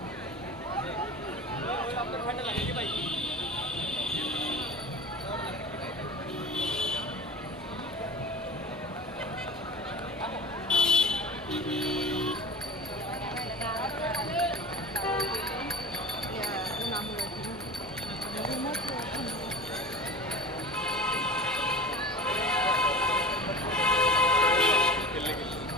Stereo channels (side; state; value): both; normal; correlation 0.34